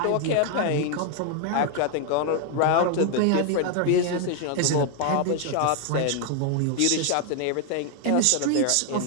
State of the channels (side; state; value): both; different; correlation 0.00